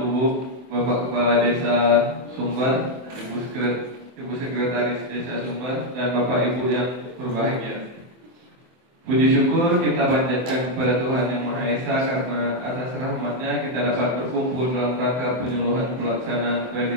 Bapak Kepala Desa Sumber, Ibu Sekretaris Desa Sumber, dan Bapak Ibu yang berbahagia. Puji syukur kita panjatkan kepada Tuhan Yang Maha Esa karena atas rahmat-Nya kita dapat berkumpul dalam rangka penyuluhan pelaksanaan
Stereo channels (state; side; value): late; left; 24 ms